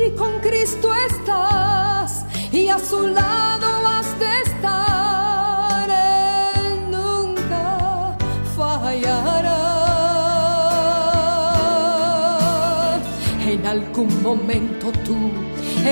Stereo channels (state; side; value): inverted; both; correlation -1.00